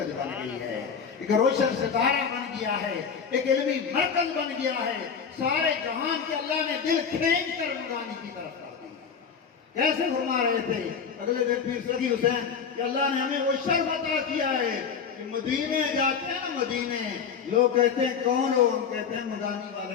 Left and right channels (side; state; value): right; quieter; 6.5 dB